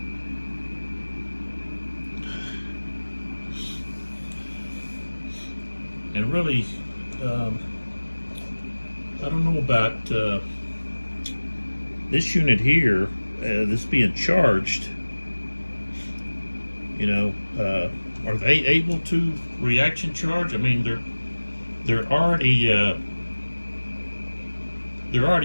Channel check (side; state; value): both; inverted; correlation -1.00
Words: And really, I don't know about this unit here, this being charged. You know, are they able to reaction charge? I mean, they're already